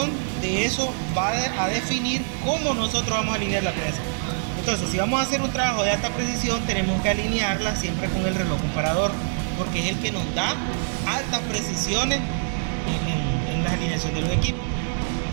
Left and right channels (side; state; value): left; silent; digital silence